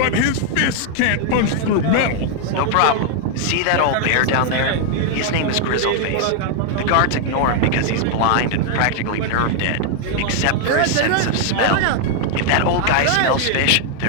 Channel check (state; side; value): different; both; correlation 0.00